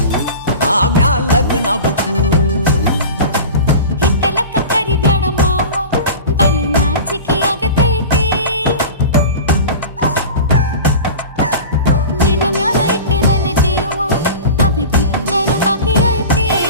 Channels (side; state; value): both; inverted; correlation -0.34